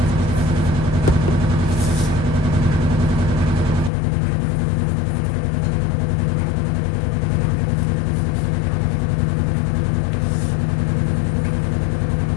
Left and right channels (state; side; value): drops out; right; at 3.9 s